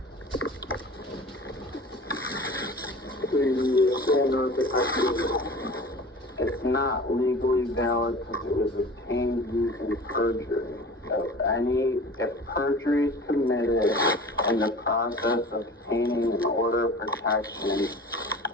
It's not legally valid because it was obtained using perjury. If perjury is committed in the process of obtaining an order of protection,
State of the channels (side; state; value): both; normal; correlation 0.39